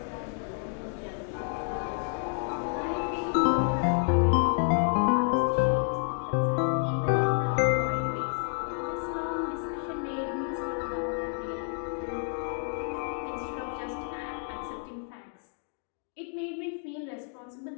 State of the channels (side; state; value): right; silent; 58 dB below the other